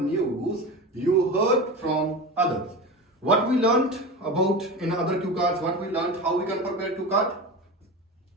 you heard from others. What we learned about in other cue cards, what we learned, how we can prepare cue card?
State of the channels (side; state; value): both; normal; correlation 0.27